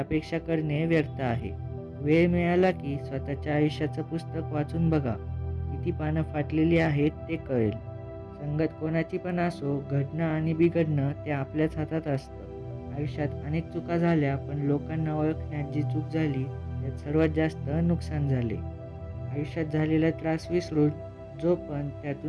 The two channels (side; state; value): both; identical; correlation 1.00